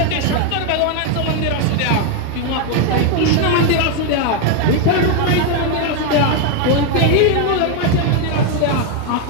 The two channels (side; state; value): both; different; correlation 0.01